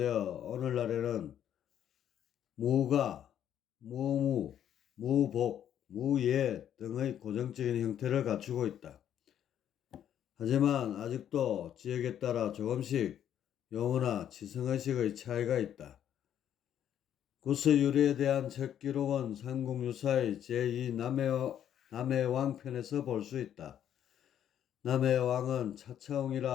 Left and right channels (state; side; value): quieter; right; 10.1 dB